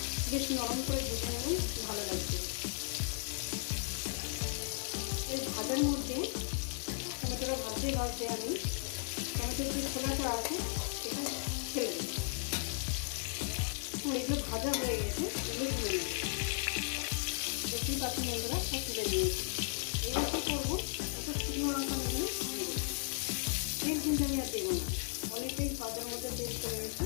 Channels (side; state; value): right; silent; 54 dB below the other